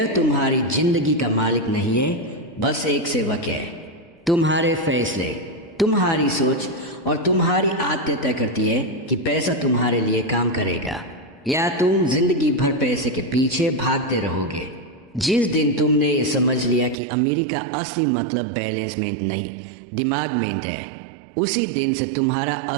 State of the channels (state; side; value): drops out; left; at 16.9 s